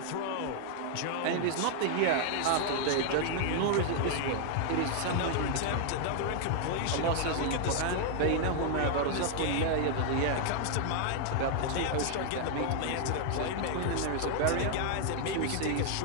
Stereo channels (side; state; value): both; different; correlation 0.00